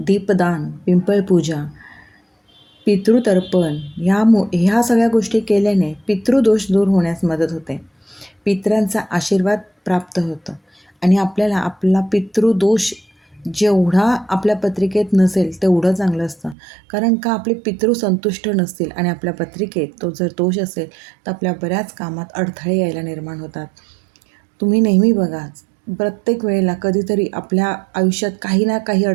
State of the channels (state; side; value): drops out; left; at 16.6 s